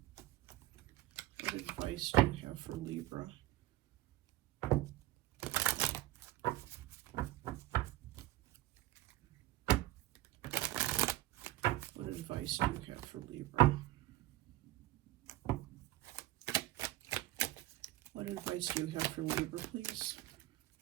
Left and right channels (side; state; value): left; quieter; 15.8 dB